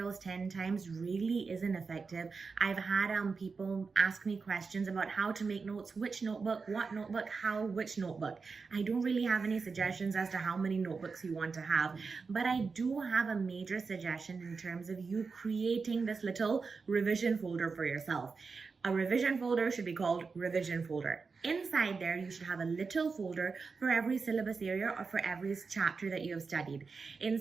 10 times really isn't effective. I've had people ask me questions about how to make notes, which notebook, what notebook, how, which notebook. I don't really have any suggestions as to how many notebooks you want to have, but I do have a major suggestion in terms of you creating this little revision folder for yourself. A revision folder should be called revision folder. Inside there, you should have a little folder for every syllabus area or for every chapter that you have studied.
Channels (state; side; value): quieter; left; 4.8 dB